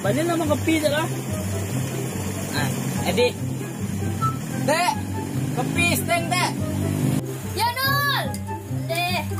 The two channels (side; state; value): both; identical; correlation 1.00